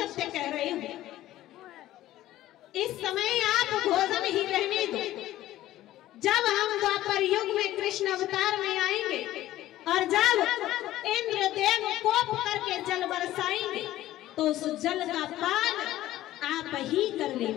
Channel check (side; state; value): right; quieter; 14.6 dB